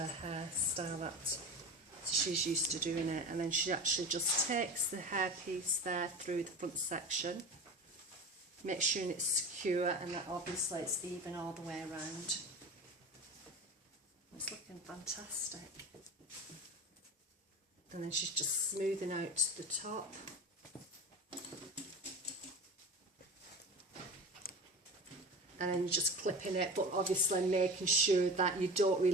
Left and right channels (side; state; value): both; normal; correlation 0.31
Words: hairstyle that she's used to doing it. And then she actually just takes the hair piece there through the front section, make sure it's secure and that obviously it's even all the way around. It's looking fantastic. And then she's just smoothing out the top. And then you're just clipping it, but obviously making sure that you don't